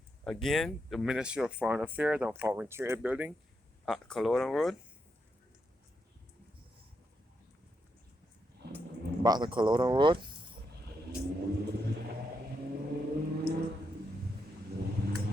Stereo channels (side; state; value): both; normal; correlation 0.82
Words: again the Ministry of Foreign Affairs and Foreign Trade building at Culloden Road. Back to Culloden Road.